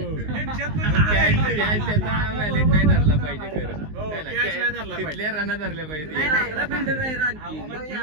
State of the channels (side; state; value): left; late; 19 ms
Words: त्यांच्यात पण त्याचा व्हॅलिड नाही धरला पाहिजे खरं. हो, है ना? catch नाही धरला पाहिजे. तिथल्या रना धरल्या पाहिजे. अहो, मग ते